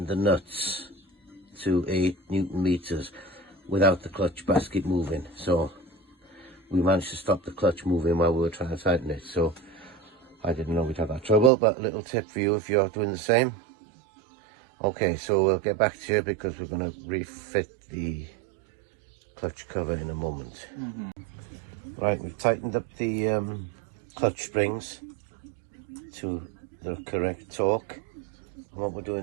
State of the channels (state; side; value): drops out; left; at 11.5 s